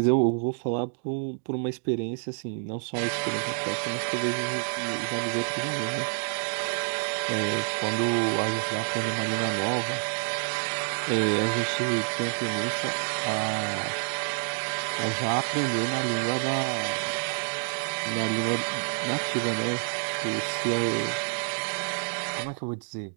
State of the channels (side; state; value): left; silent; digital silence